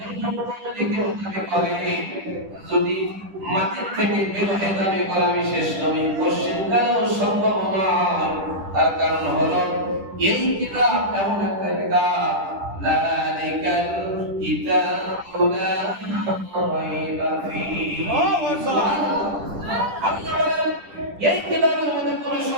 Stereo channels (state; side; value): late; left; 10 ms